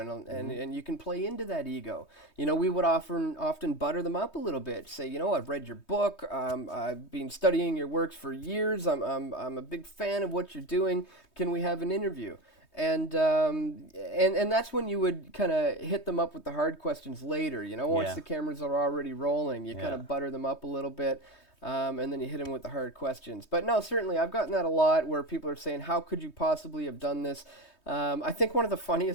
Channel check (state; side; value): late; right; 3.2 ms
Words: you can play into that ego. We would often butter them up a little bit. Say, I've read your book. I've been studying your works for years. I'm a big fan of what you're doing. Can we have an interview? And that's when you would kind of hit them up with the hard questions later. Once the cameras are already rolling, you kind of butter them up a little bit. And then you hit them with the hard questions. But no, certainly, I've gotten that a lot where people are saying, how could you possibly have done this? I think one of the